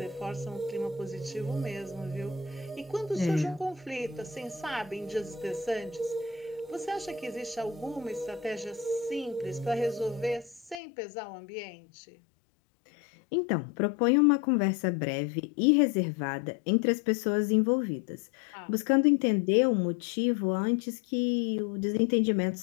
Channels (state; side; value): drops out; right; at 10.8 s